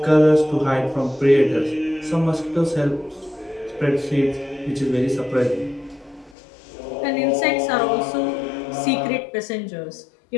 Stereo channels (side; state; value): right; drops out; at 6.4 s